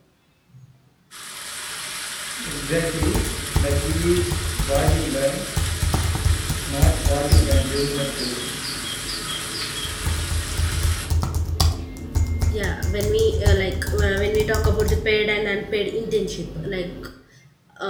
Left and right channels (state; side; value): identical; both; correlation 1.00